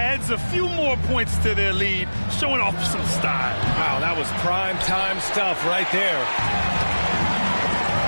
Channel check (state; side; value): inverted; both; correlation -1.00